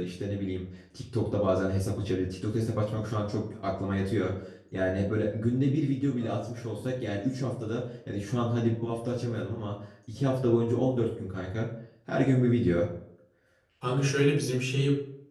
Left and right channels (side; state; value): both; identical; correlation 1.00